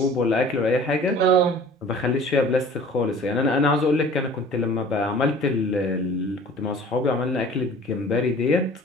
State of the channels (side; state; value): both; normal; correlation 0.47